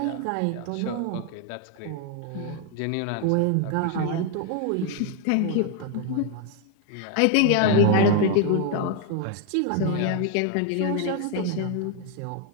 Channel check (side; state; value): both; different; correlation 0.00